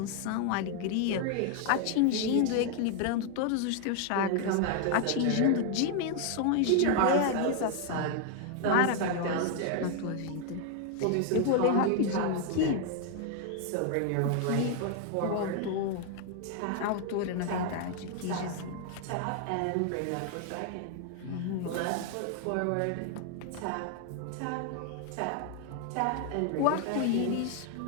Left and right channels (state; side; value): different; both; correlation 0.00